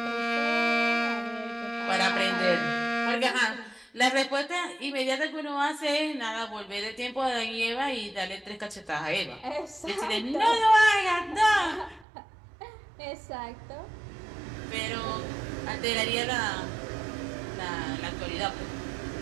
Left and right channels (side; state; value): left; drops out; at 12.1 s